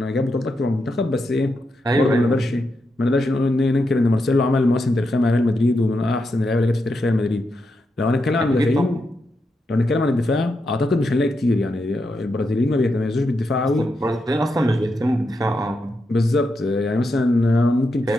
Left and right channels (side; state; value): both; normal; correlation 0.84